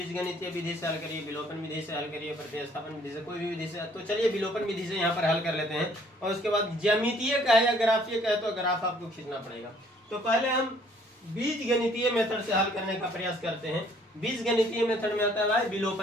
विधि से हल करिए, विलोपन विधि से हल करिए, प्रतिस्थापन विधि से, कोई भी विधि से। तो चलिए विलोपन विधि से यहाँ पर हल कर लेते हैं, और उसके बाद ज्यामितीय का है या ग्राफीय का है तो ग्राफ आपको खींचना पड़ेगा। तो पहले हम बीजगणितीय मेथड से हल करने का प्रयास करते हैं। बीजगणितीय मेथड में आता है भाई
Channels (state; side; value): normal; both; correlation 0.60